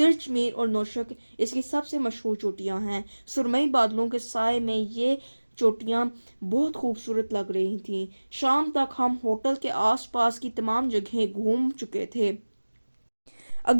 میر اور نوشک اس کی سب سے مشہور چوٹیاں ہیں۔ سرمئی بادلوں کے سائے میں یہ چوٹیاں بہت خوبصورت لگ رہی تھیں۔ شام تک ہم ہوٹل کے آس پاس کی تمام جگہیں گھوم چکے تھے۔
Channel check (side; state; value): both; inverted; correlation -1.00